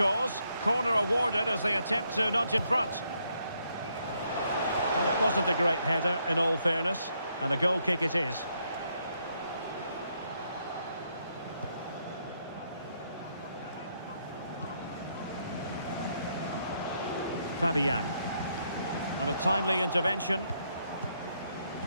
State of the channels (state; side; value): inverted; both; correlation -0.75